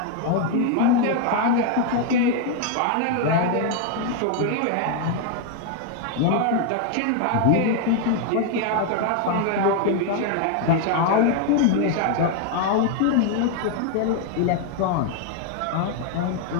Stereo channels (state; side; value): different; both; correlation 0.01